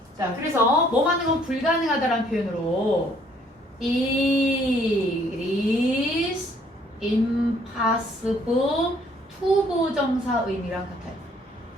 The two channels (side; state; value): both; normal; correlation 0.62